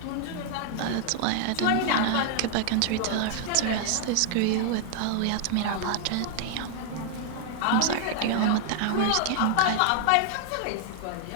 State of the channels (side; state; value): both; different; correlation 0.00